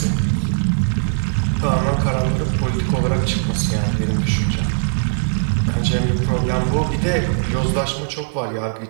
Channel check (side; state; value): left; silent; digital silence